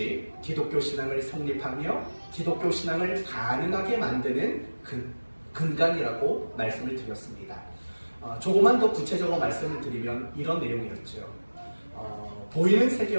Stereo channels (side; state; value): both; inverted; correlation -1.00